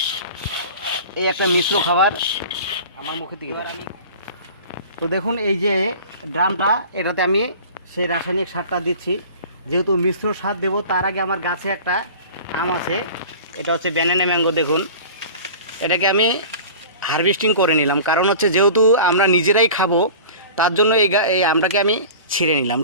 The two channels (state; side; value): inverted; both; correlation -0.39